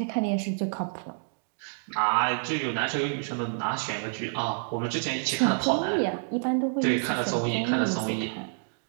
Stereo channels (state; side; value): silent; left; 59 dB below the other